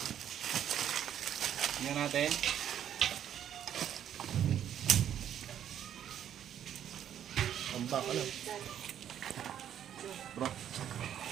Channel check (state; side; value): quieter; left; 10.0 dB